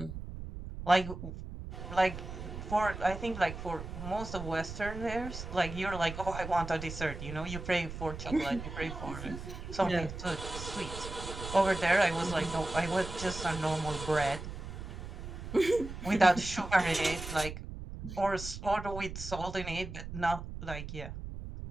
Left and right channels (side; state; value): right; noise; rumble, 9 dB below the sound